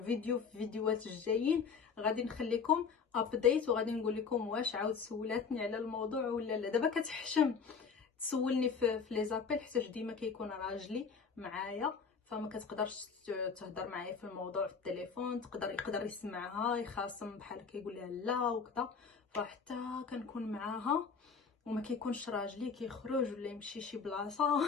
في الفيديوهات الجايين غادي نخليكم ابديت، وغادي نقول لكم واش عاود سولاتني على الموضوع ولا لا. دابا كتحشم تسولني في لي زابيل حيت ديما كيكون راجلي معايا، فما كتقدرش تهضر معايا في الموضوع في التليفون، يقدر يسمعها يخاصم بحال كيقول لها لا وكذا، فحتى كنكون معاها وما كيكونش راجلي كيخرج ولا يمشي شي بلاصه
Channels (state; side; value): quieter; right; 5.7 dB